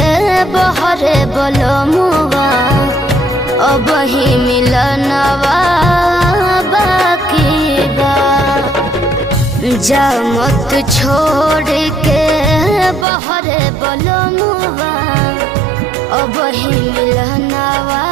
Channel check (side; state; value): left; drops out; at 13.1 s